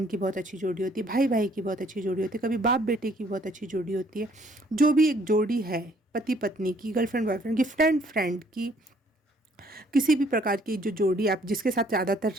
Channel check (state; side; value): normal; both; correlation 0.63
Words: की बहुत अच्छी जोड़ी होती है, भाई भाई की बहुत अच्छी जोड़ी होती है, कभी बाप बेटे की बहुत अच्छी जोड़ी होती है। जो भी एक जोड़ी है, पति पत्नी की, गर्लफ्रेंड बॉयफ्रेंड की, फ्रेंड फ्रेंड की, किसी भी प्रकार की जो जोड़ी आप जिसके साथ ज़्यादातर